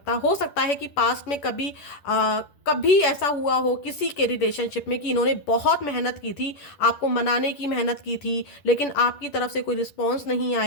हो सकता है कि पास्ट में कभी ऐसा हुआ हो किसी के रिलेशनशिप में कि इन्होंने बहुत मेहनत की थी, आपको मनाने की मेहनत की थी, लेकिन आपकी तरफ से कोई रिस्पॉन्स नहीं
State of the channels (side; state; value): right; late; 10 ms